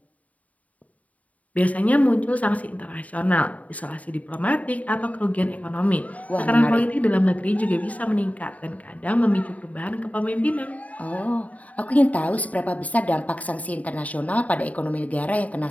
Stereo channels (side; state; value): right; late; 0.070 ms